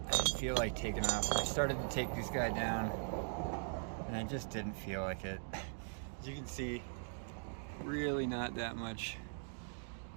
I didn't feel like taking off. I started to take this guy down and I just didn't feel like it. As you can see, really not that much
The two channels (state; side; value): silent; left; digital silence